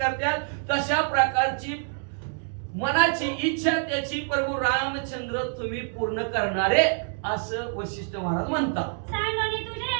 तशा प्रकारची मनाची इच्छा त्याची प्रभू रामचंद्र तुम्ही पूर्ण करणारे असं वशिष्ठ महाराज म्हणतात. सांगोनी तुझे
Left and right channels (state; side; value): silent; left; 61 dB below the other